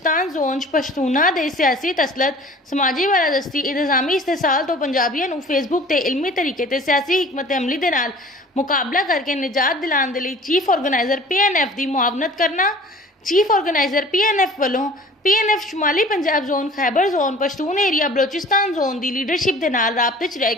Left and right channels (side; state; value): both; normal; correlation 0.46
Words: जोन च पश्तूना दे सियासी तसलत, समाजी बालादस्ती, इंतजामी इस्तेसाल तो पंजाबियों नूं फेसबुक ते इलमी तरीके ते सियासी हिकमत अमली दे नाल मुकाबला करके निजात दिलाने दे लई चीफ ऑर्गेनाइजर PNF दी मुआवनत करना। चीफ ऑर्गेनाइजर PNF वालों PNF शुमाली Punjab zone, Khyber zone, Pashtun area Balochistan zone दी लीडरशिप दे नाल राबते च रह